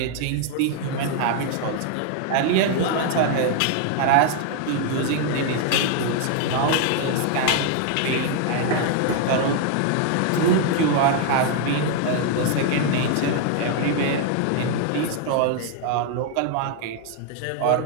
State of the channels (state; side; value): different; both; correlation 0.00